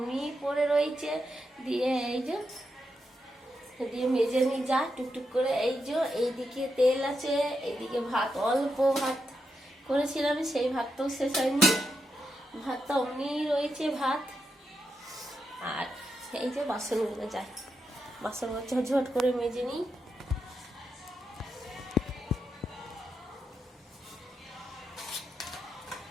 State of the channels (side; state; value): both; normal; correlation 0.84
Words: পড়ে রয়েছে। দিয়ে এই যে দিয়ে মেজে নিয়ে যা টুকটুক করে। এই যে এইদিকে তেল আছে, এইদিকে ভাত, অল্প ভাত করেছিলাম, সেই ভাতটাও শেষ হয়নি, ভাতটা অমনি রয়েছে ভাত। আর এই যে বাসনগুলো যায়, বাসনগুলো ঝটঝট করে মেজে নিই।